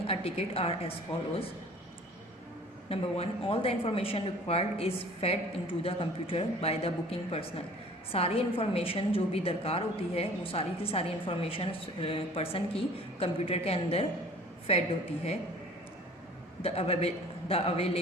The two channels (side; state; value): both; normal; correlation 0.48